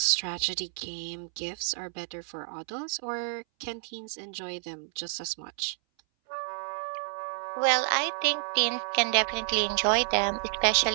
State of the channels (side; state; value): left; silent; 58 dB below the other